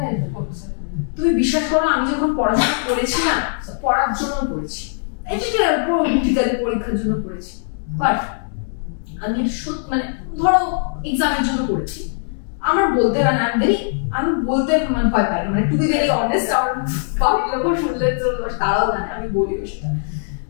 হেল্প করছে? তুমি বিশ্বাস করো, আমি যখন পড়াশোনা করেছি না, পড়ার জন্য পড়েছি, পরীক্ষার জন্য পড়েছি, বাট আমি মানে ধরো এক্সামের জন্য পড়েছি। আমার বলতে হয় না, আমি বলতে মানে ভয় পাই, মানে টু বি ভেরি অনেস্ট, আর বাড়ির লোক শুনলে তো তারাও জানে আমি বলি সেটা।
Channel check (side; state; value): right; silent; digital silence